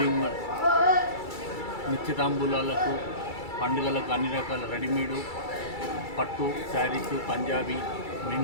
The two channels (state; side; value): late; right; 2.3 ms